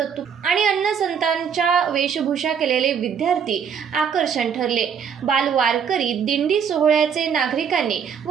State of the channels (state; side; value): quieter; left; 7.3 dB